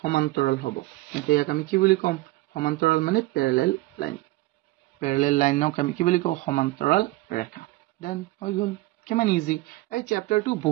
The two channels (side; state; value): left; quieter; 19.1 dB